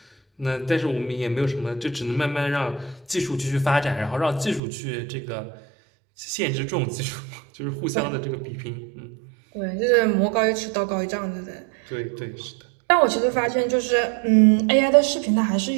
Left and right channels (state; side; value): drops out; left; at 4.6 s